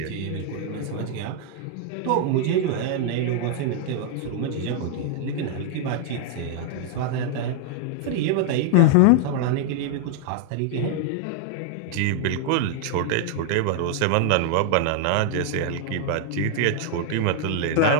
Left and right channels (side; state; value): both; different; correlation 0.00